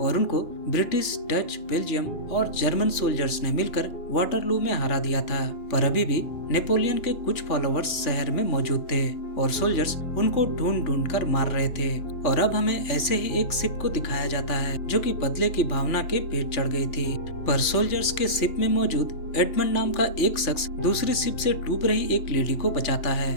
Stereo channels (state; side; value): late; right; 3.6 ms